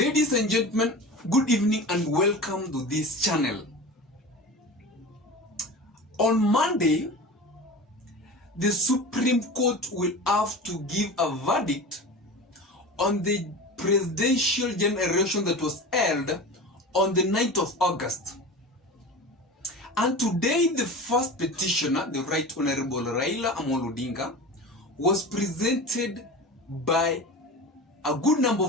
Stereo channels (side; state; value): both; normal; correlation 0.32